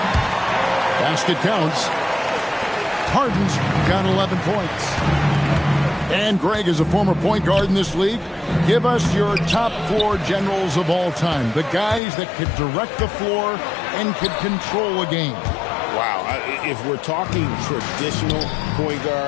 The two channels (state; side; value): drops out; right; at 12.0 s